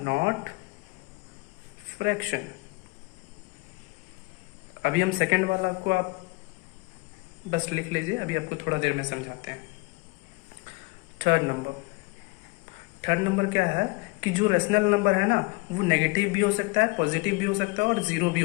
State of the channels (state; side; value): quieter; right; 25.7 dB